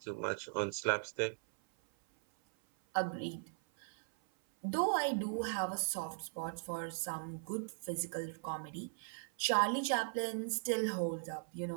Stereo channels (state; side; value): silent; left; 52 dB below the other